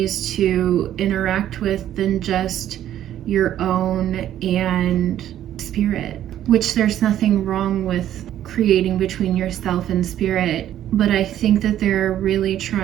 to interact with than just your own and spirit. which there's nothing wrong with creating between yourself and spirit. But I think that they're really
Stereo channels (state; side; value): quieter; left; 11.6 dB